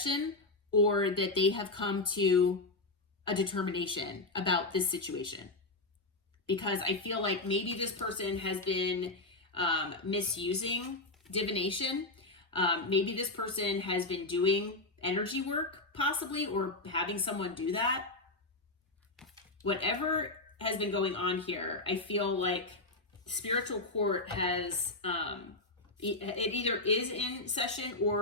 or that they have come to a determination about this situation. Because I feel like maybe this person has been misusing divination. Maybe this person has been doing energy work, possibly, or having someone do that. Whatever has been going on here, I feel like spiritual court has, it either is in session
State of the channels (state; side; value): quieter; right; 3.0 dB